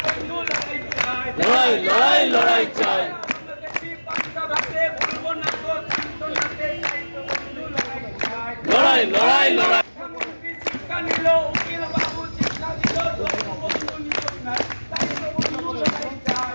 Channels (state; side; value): inverted; both; correlation -1.00